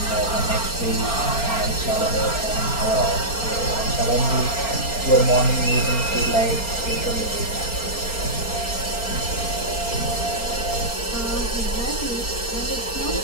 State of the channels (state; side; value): late; right; 4.4 ms